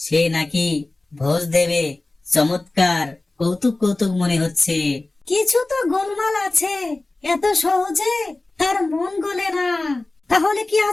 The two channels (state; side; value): quieter; right; 3.0 dB